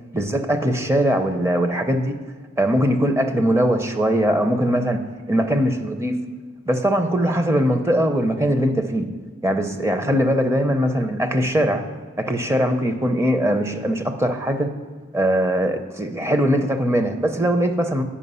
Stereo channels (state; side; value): normal; both; correlation 0.79